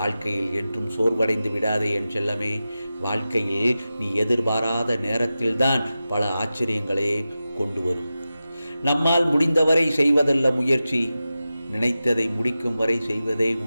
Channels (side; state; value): both; inverted; correlation -0.94